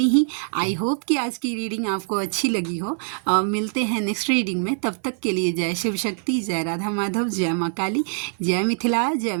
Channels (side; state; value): left; silent; 62 dB below the other